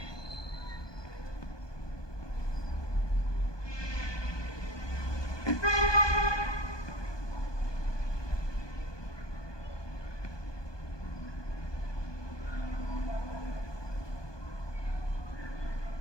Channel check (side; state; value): right; late; 1.2 ms